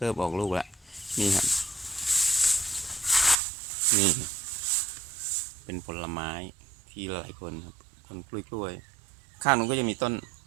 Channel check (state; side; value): drops out; left; at 3.4 s